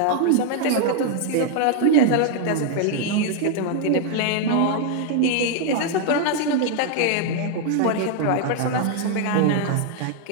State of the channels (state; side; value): different; both; correlation 0.00